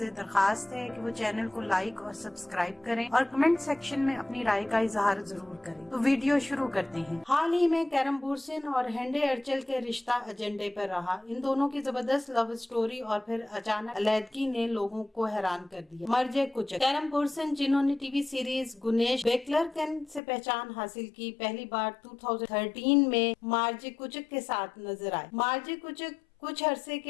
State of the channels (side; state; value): right; drops out; at 20.2 s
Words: दरखास्त है कि वो चैनल को लाइक और सब्सक्राइब करें और कमेंट सेक्शन में अपनी राय का इजहार जरूर करें। तो वीडियो शुरू करते हैं। हाल ही में कैरम बोर्सन और हेंडे अर्चल के रिश्ता एजेंडे पर रहा। इन दोनों की जबरदस्त लव स्टोरी और फिर अचानक अलैदगी ने लोगों को हैरान कर दिया। मर्जे कुचक। कैरम बोर्सन जिन्होंने टीवी सीरीज गुनेश बेकलरकन से पहचान हासिल की, पहली बार 2013 में मार्जे कुचक के साथ नजर आए। मार्जे कुचक कुछ अरसे